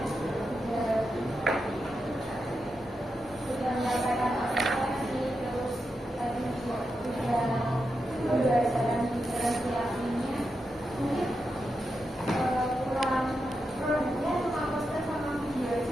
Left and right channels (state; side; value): normal; both; correlation 0.87